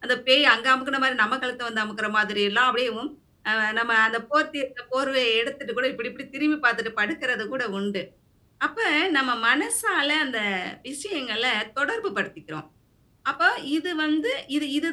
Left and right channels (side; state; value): both; identical; correlation 1.00